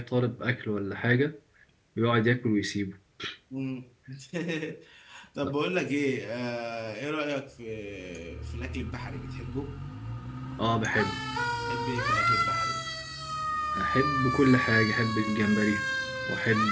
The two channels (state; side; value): identical; both; correlation 1.00